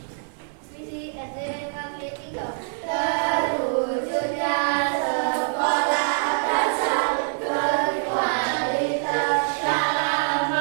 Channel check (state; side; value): silent; left; digital silence